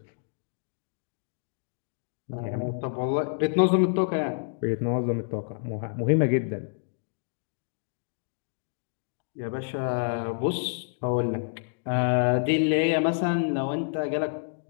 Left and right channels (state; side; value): silent; right; digital silence